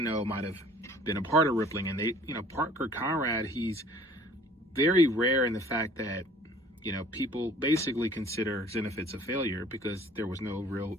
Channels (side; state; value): both; normal; correlation 0.52